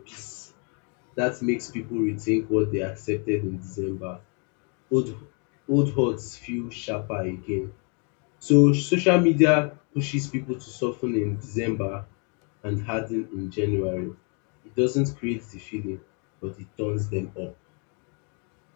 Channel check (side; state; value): right; quieter; 37.5 dB